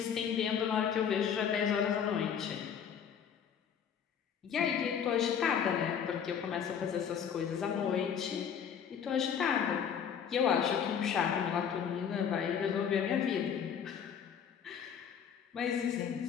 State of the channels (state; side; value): quieter; right; 7.8 dB